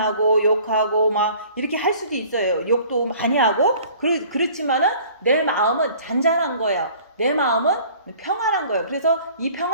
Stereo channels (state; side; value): inverted; both; correlation -0.50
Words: 욕하고 막 이렇게 할 수도 있어요. 욕도 많이 하고 그렇지만은 내 마음은 잔잔한 거예요. 내 마음은 평안한 거예요. 그래서 이